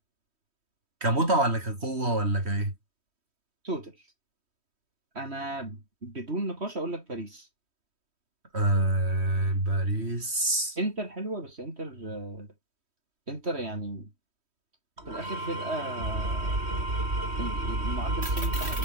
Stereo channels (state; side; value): late; left; 3.1 ms